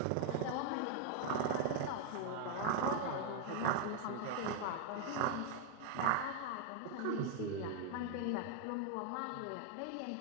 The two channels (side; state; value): both; different; correlation 0.01